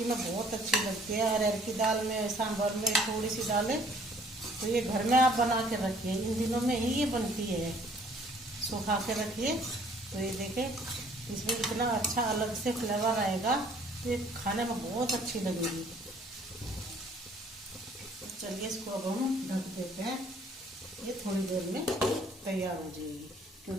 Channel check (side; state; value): both; normal; correlation 0.59